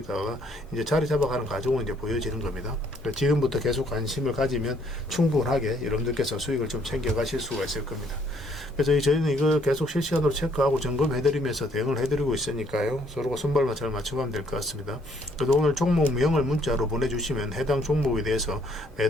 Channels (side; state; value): both; normal; correlation 0.65